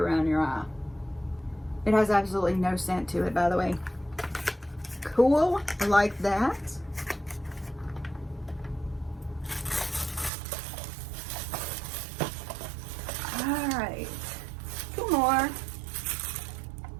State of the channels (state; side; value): drops out; left; at 10.3 s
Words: your eye. It has absolutely no scent to it, by the way. Cool, I like that. All right, 2 more.